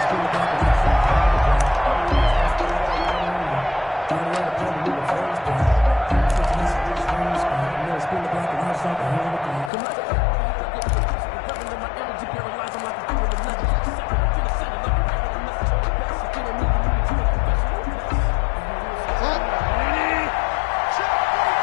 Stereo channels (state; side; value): drops out; right; at 9.7 s